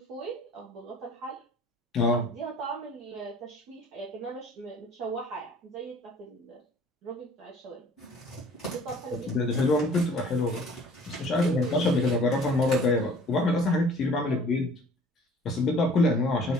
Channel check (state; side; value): normal; both; correlation 0.51